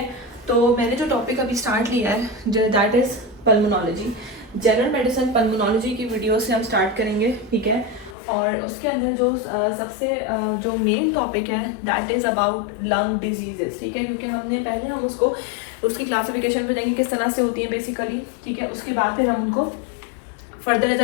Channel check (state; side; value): drops out; right; at 8.2 s